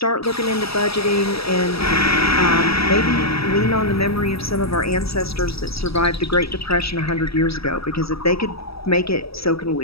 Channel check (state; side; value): late; right; 0.77 ms